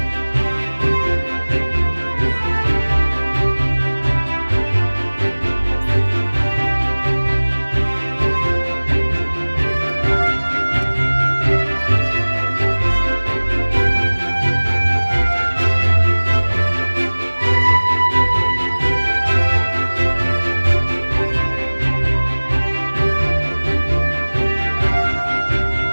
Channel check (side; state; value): both; inverted; correlation -1.00